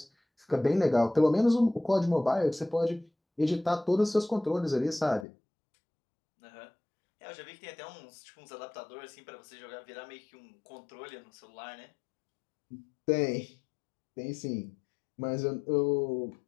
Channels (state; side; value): drops out; right; at 5.2 s